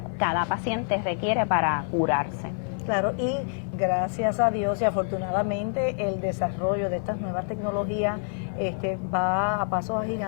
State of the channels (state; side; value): silent; right; 57 dB below the other